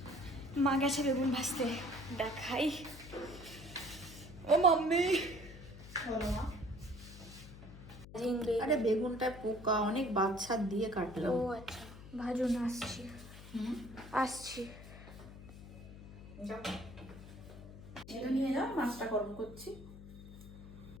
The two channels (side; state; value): left; noise; hum, 15 dB below the sound